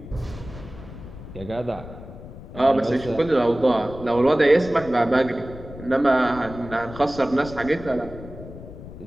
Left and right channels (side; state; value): left; noise; rumble, 14 dB below the sound